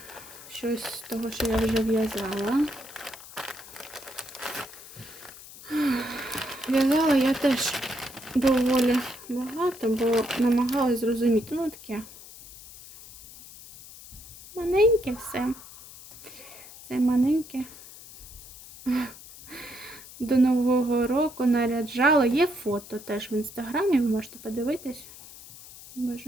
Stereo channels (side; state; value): left; noise; hiss, 17 dB below the sound